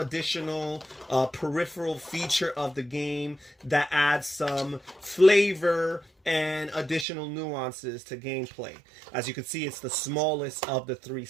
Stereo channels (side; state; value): left; drops out; at 7.1 s